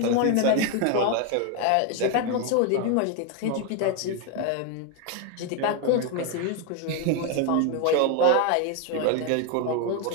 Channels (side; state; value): both; different; correlation 0.01